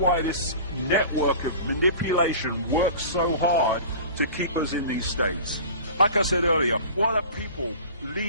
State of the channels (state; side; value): inverted; both; correlation -0.39